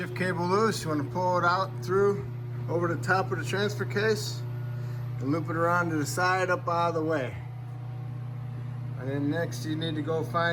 cable loose, you want to pull it out through over the top of the transfer case and loop it around to the side up out of the way. And then next you need to go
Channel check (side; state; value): both; identical; correlation 1.00